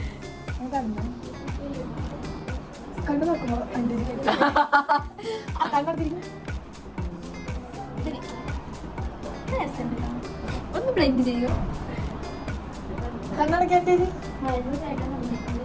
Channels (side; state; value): both; identical; correlation 1.00